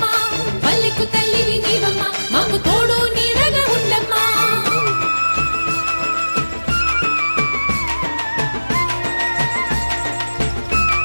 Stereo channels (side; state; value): both; inverted; correlation -1.00